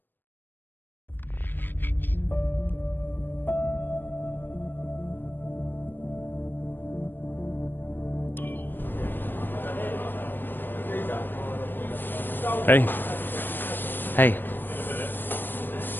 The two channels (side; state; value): right; late; 0.094 ms